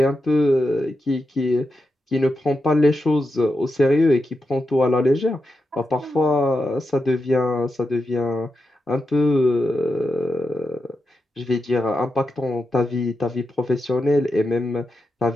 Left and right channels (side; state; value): both; normal; correlation 0.88